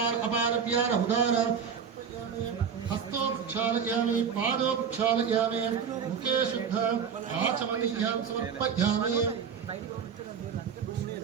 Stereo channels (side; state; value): left; quieter; 7.0 dB